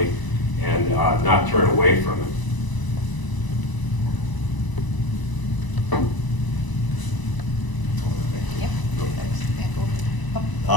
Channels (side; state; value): right; late; 1.0 ms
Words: and not turn away from it.